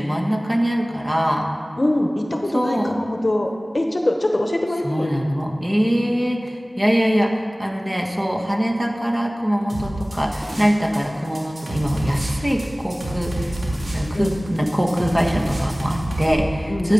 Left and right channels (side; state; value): both; normal; correlation 0.98